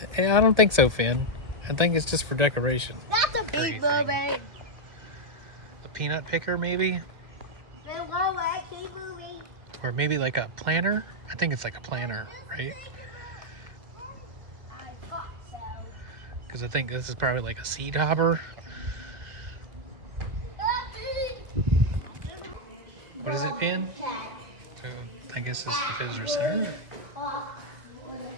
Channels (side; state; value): left; late; 2.1 ms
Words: on? I don't think so, Finn. I think it's just for decoration. That's a big mermaid. A peanut picker, maybe? Keep moving. Or maybe like a planter? I think it's like a planter, right? I thought so. Because I think this is probably like a seed hopper. What is it, Finn? Oh, I guess it's the visitor center.